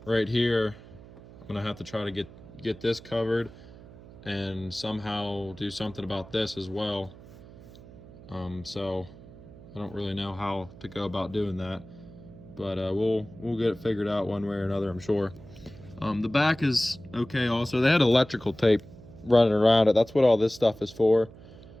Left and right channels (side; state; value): right; noise; hum, 19 dB below the sound